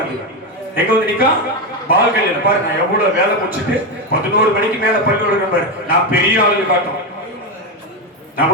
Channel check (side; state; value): both; normal; correlation 0.11